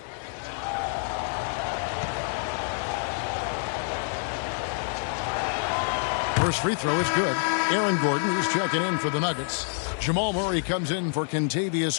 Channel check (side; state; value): right; silent; 60 dB below the other